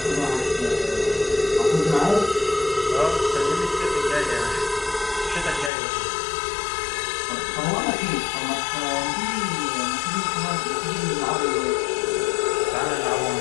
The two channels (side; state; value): right; drops out; at 5.7 s